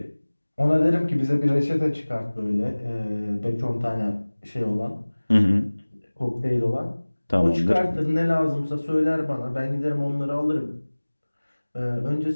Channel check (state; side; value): inverted; both; correlation -1.00